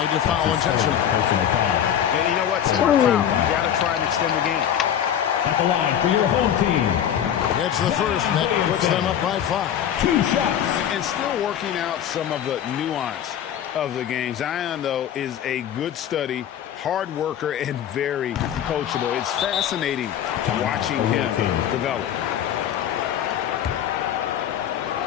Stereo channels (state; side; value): quieter; right; 9.8 dB